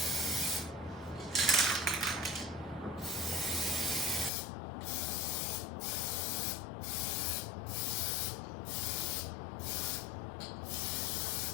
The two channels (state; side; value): drops out; right; at 4.3 s